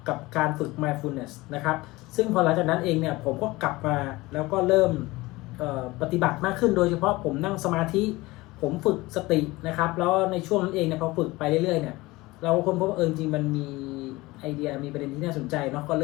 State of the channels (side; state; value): right; quieter; 20.7 dB